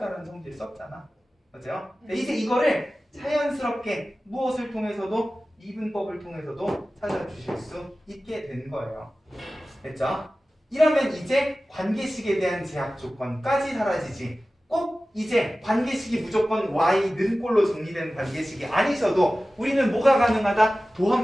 성질 썼잖아. 맞아요? 이제 이거를 자연스럽게 무엇을 통해서도 미분법을 통해서도 찾아주실 수 있게 된 거예요. 됐죠? 이러면 이제 관계식에 대한 제약 조건까지 사라지지. 꼭 이제 관계식이 무조건 y는 꼴로 정리되는 관계식이 아니셔도 우리는 뭐가 가능하다?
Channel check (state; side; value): normal; both; correlation 0.96